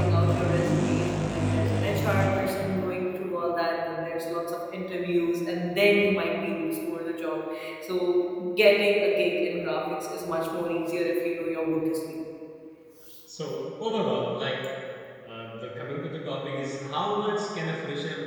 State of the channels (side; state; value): both; identical; correlation 1.00